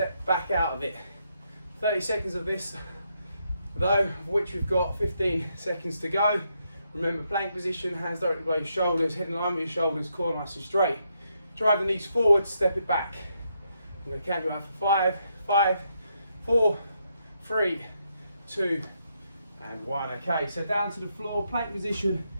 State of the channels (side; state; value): both; inverted; correlation -0.79